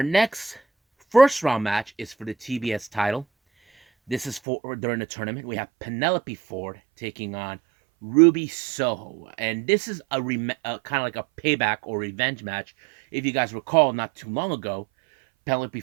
next first round match is for the TBS title. This is for during the tournament. We have Penelope Ford taking on Ruby Soho, and this is a kind of like a payback or revenge match. If you guys recall, not too long ago, Penelope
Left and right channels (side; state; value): left; drops out; at 4.4 s